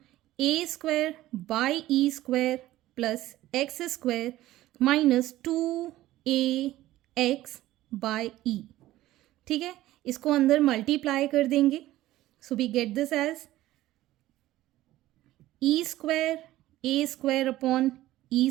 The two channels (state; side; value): quieter; left; 15.6 dB